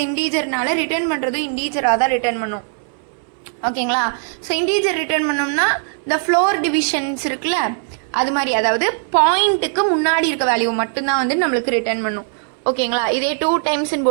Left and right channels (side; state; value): left; silent; 64 dB below the other